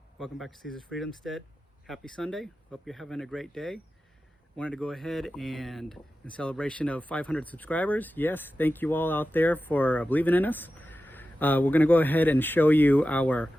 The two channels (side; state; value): both; normal; correlation 0.93